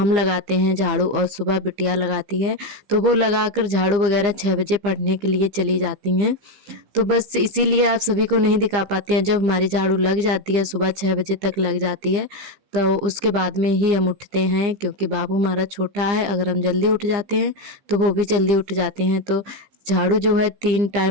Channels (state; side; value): late; left; 15 ms